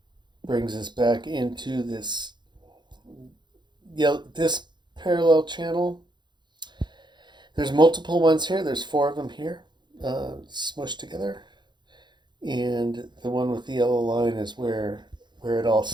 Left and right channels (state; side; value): late; left; 0.21 ms